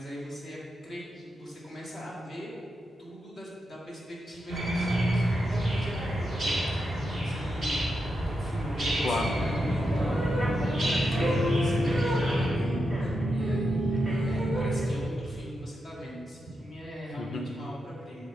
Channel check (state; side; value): normal; both; correlation 0.86